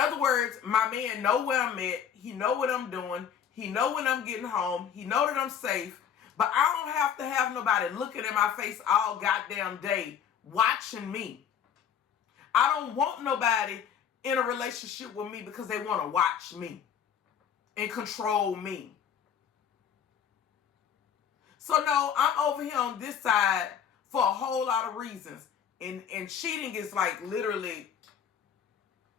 words, my man know where I'm at. He know what I'm doing. He know when I'm getting home. He know that I'm safe. But I don't have to have nobody looking in my face all goddamn day watching me. I don't want nobody in a relationship with me because they want to watch me and control me. So no, I'm over here on this side for a whole lot of reasons. And cheating is like literally,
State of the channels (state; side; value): quieter; right; 8.3 dB